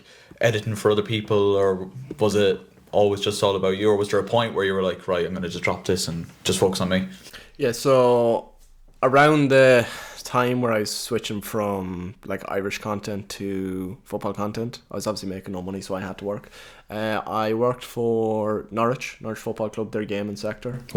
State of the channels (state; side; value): identical; both; correlation 1.00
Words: editing for other people, or was it always just all about you, or was there a point where you were like, right, I'm going to just drop this and just focus on me? Yeah, so around the time where I was switching from like Irish content to football content, I was obviously making no money, so I had to work. I worked for Norwich Football Club, their gaming sector.